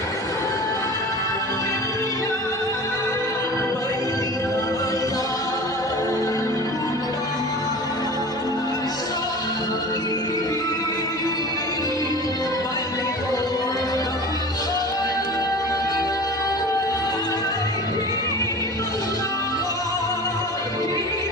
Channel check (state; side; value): normal; both; correlation 0.37